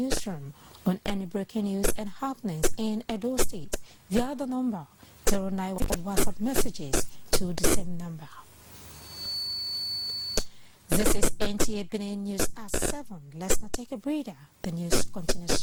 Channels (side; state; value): both; identical; correlation 1.00